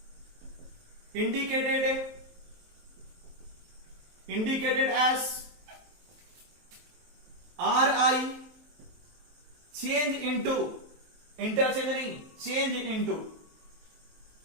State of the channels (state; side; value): late; left; 23 ms